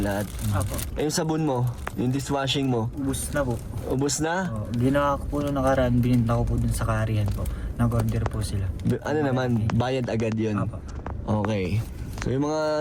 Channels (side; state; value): both; identical; correlation 1.00